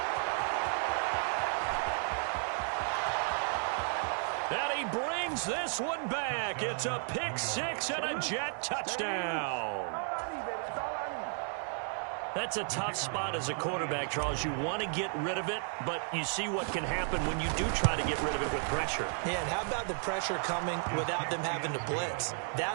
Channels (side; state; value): left; silent; 55 dB below the other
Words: And he brings this one back. It's a pick six and a Jet touchdown. That's a tough spot as a quarterback, Charles. You want to get rid of it, but you see what can happen when you do try to get rid of it with pressure. Yeah, and how about the pressure coming without them having to blitz?